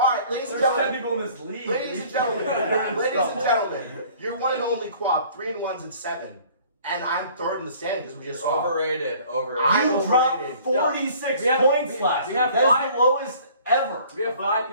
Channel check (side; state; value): both; inverted; correlation -0.52